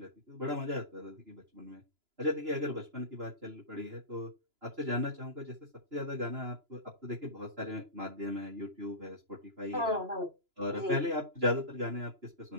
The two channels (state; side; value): late; left; 2.9 ms